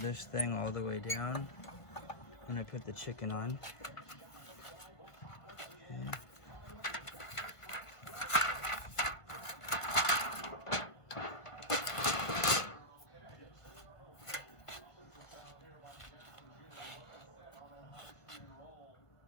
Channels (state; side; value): late; right; 1.5 ms